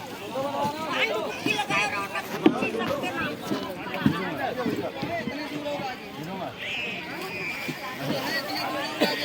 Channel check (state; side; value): identical; both; correlation 1.00